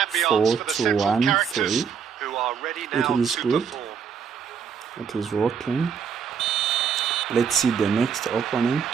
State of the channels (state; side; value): quieter; left; 6.8 dB